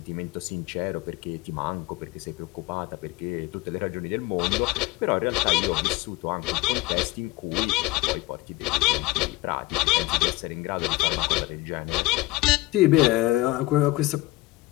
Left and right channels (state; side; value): quieter; right; 19.7 dB